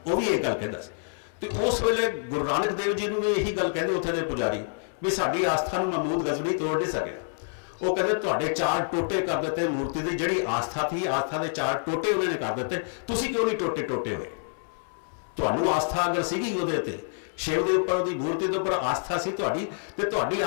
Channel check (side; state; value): right; silent; 60 dB below the other